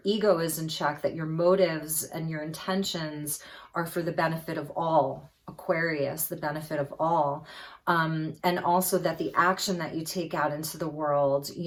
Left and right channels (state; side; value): identical; both; correlation 1.00